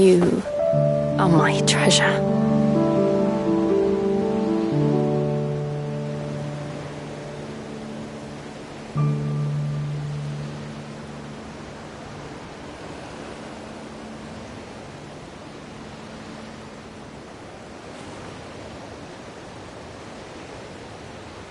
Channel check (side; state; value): both; identical; correlation 1.00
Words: are my treasure.